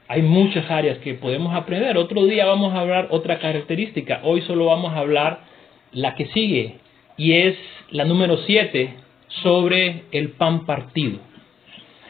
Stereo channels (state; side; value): quieter; right; 7.3 dB